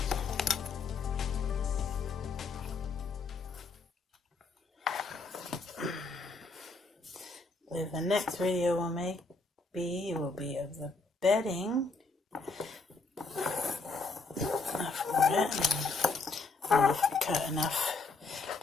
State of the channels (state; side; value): quieter; right; 3.8 dB